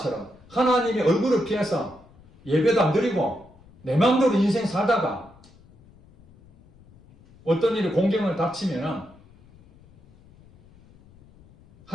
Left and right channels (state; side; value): noise; left; rumble, 26 dB below the sound